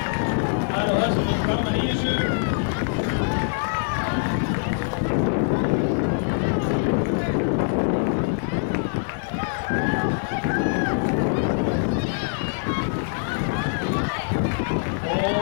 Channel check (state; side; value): silent; right; digital silence